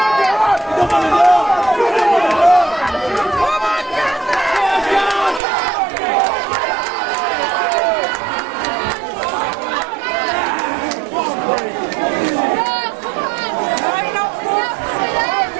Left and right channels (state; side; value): drops out; left; at 5.4 s